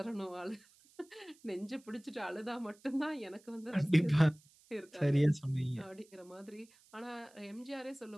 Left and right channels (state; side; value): noise; right; hiss, 28 dB below the sound